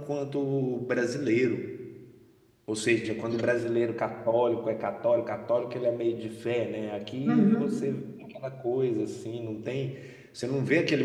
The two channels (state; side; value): identical; both; correlation 1.00